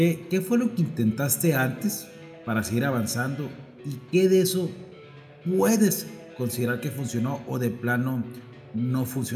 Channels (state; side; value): identical; both; correlation 1.00